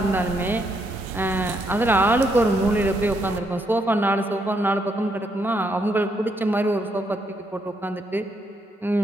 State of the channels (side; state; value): both; normal; correlation 0.76